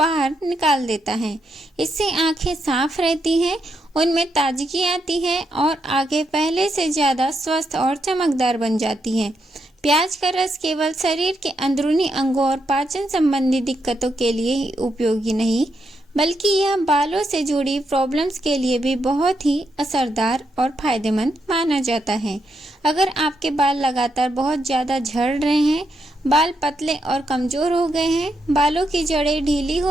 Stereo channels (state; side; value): normal; both; correlation 0.81